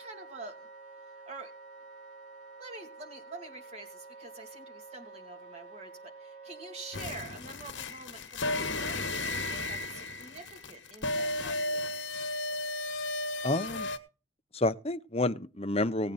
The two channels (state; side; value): normal; both; correlation -0.05